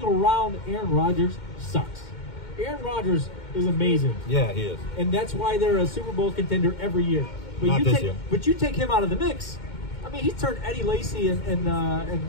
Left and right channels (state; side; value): late; right; 2.2 ms